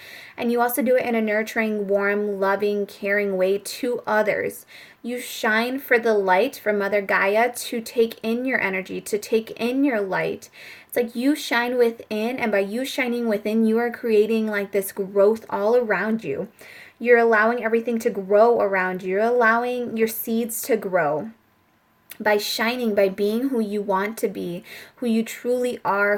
And you also do it in a nurturing, warm, loving, caring way to others. You shine for the light from Mother Gaia to take in your energy, to take in your light. It's like you shine within, and by you shining within, you are creating like this growth all around you. You're allowing everything to grow around you. You're allowing your seeds to grow. By shining, by being who you want to be, who you truly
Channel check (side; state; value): both; identical; correlation 1.00